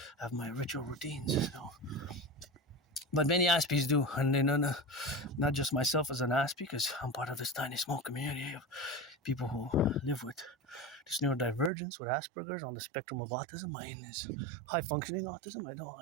have my ritual routines. So. But many Aspies do, and they know not just myself as an Aspie, because I'm part of this tiny small community of people who live with this neurodivergence, with Asperger's, on the spectrum of autism. Mine is high-functioning autism. I know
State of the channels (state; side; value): drops out; left; at 11.7 s